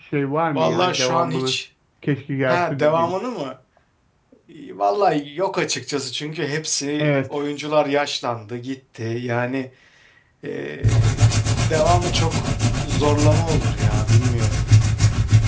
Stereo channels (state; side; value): identical; both; correlation 1.00